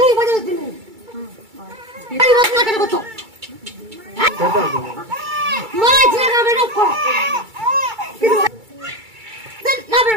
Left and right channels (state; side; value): late; left; 2.3 ms